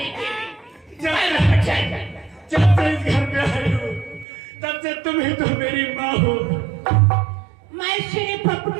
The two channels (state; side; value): drops out; left; at 4.2 s